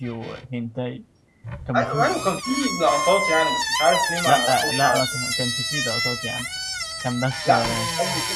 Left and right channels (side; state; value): both; identical; correlation 1.00